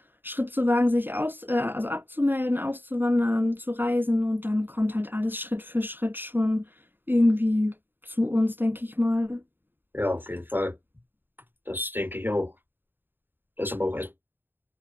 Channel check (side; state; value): left; late; 0.096 ms